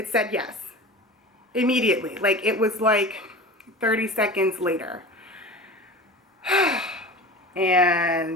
said yes immediately. Like it was like 30 seconds later.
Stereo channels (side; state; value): both; normal; correlation 0.33